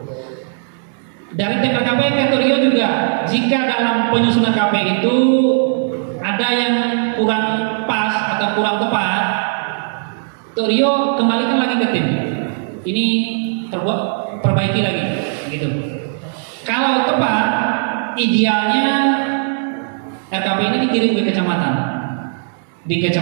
Dari tim RKP ke Datorio juga, jika dalam penyusunan RKP itu ada yang kurang pas atau kurang tepat, Datorio kembalikan lagi ke tim. Ini perbaiki lagi, gitu. Kalau tepat, idealnya RKP ini dikirim ke kecamatan. Di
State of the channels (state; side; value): silent; left; 60 dB below the other